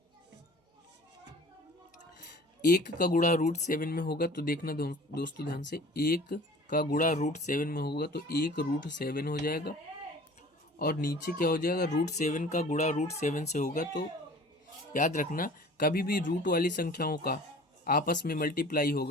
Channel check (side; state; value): both; normal; correlation 0.45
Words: 1 का गुणा √7 में होगा तो देखना दोस्तों ध्यान से, 1 का गुणा √7 में होगा तो 1√7 हो जाएगा। और नीचे क्या हो जाएगा, √7 का गुणा √7 से होगा। तो याद रखना, कभी भी रूट वाली संख्याओं का आपस में मल्टीप्लाई